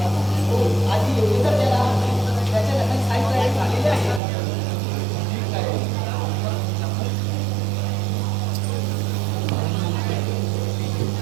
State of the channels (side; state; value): left; drops out; at 4.2 s